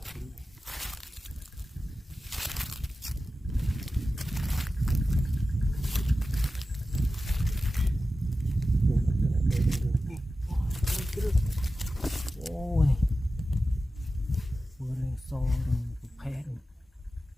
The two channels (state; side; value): normal; both; correlation 0.93